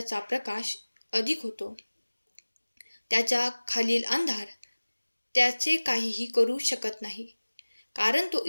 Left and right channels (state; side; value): inverted; both; correlation -1.00